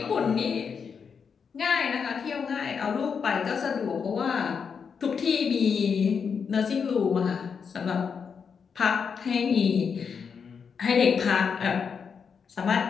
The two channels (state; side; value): quieter; right; 6.3 dB